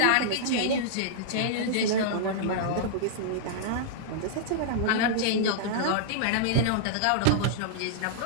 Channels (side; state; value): both; different; correlation -0.02